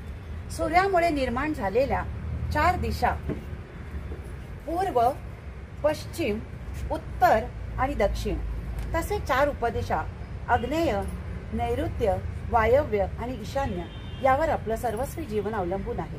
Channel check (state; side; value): identical; both; correlation 1.00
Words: सूर्यामुळे निर्माण झालेल्या 4 दिशा पूर्व, पश्चिम, उत्तर आणि दक्षिण तसे 4 उपदिशा आग्नेय, नैऋत्य, वायव्य आणि ईशान्य यावर आपलं सर्वस्वी जीवन अवलंबून आहे।